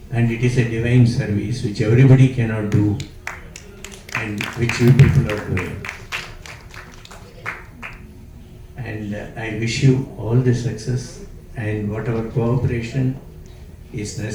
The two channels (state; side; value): identical; both; correlation 1.00